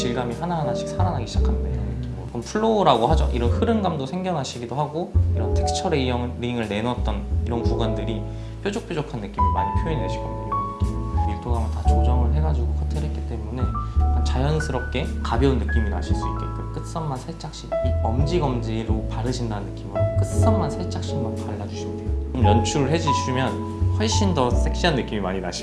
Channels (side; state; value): both; identical; correlation 1.00